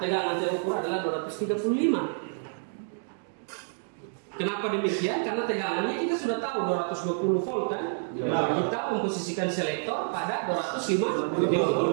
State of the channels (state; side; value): silent; left; digital silence